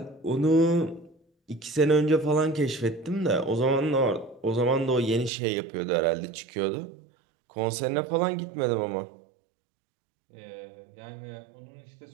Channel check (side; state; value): left; drops out; at 5.3 s